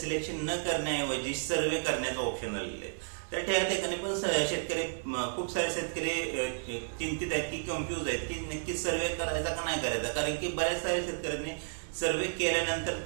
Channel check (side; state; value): left; silent; digital silence